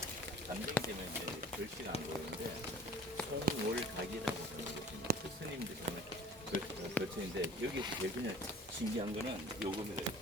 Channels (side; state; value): both; normal; correlation 0.47